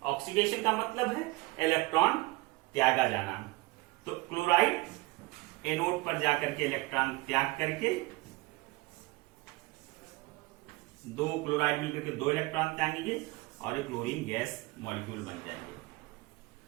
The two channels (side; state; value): left; quieter; 22.5 dB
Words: ऑक्सीडेशन का मतलब है इलेक्ट्रॉन त्यागा जाना। तो क्लोराइड एनोड पर जाकर के इलेक्ट्रॉन त्याग करके, दो क्लोराइड मिलकर के दो इलेक्ट्रॉन त्यागेंगे और एक क्लोरीन गैस मॉलिक्यूल बन जाएंगे।